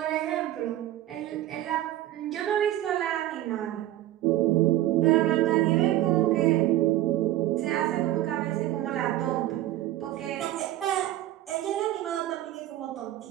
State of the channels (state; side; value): quieter; left; 14.3 dB